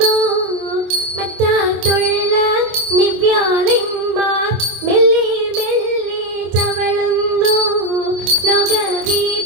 മറ്റാത്തുള്ള നിവ്യാളന്മാർ മെല്ലെ മെല്ലെ ചവളുന്നു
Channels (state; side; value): late; left; 25 ms